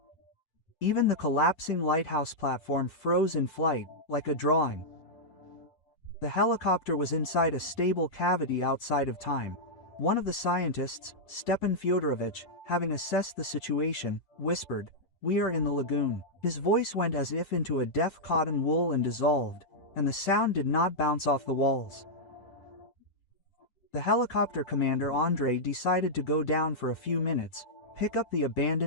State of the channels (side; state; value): right; late; 8.3 ms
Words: Even the collapsing lighthouse platform froze in flight, like a drawing. The helicopter was inside a stable cavity outside of time. One of the scientists, Stepan Fyodorovich, having assessed the situation, whispered, "We are in the lagoon." His voice went as if into a deaf cotton wool and dissolved, and the sound did not bounce off the walls. The helicopter commander Andrei decided to go down for a few minutes, pick up the